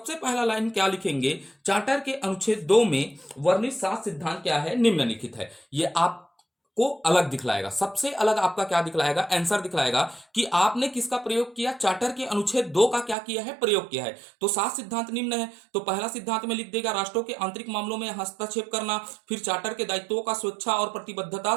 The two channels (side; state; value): left; drops out; at 13.2 s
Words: पहला लाइन क्या लिखेंगे, चार्टर के अनुच्छेद 2 में वर्णित 7 सिद्धांत क्या है, निम्नलिखित है। ये आप को अलग दिखलाएगा। सबसे अलग आपका क्या दिखलाएगा? आंसर दिखलाएगा कि आपने किसका प्रयोग किया, चार्टर के अनुच्छेद 2 का क्या किया है, प्रयोग किया है। तो 7 सिद्धांत निम्न है, तो पहला सिद्धांत में लिख देगा राष्ट्रों के आंतरिक मामलों में हस्तक्षेप करना, फिर चार्टर के दायित्वों का स्वेच्छा और प्रतिबद्धता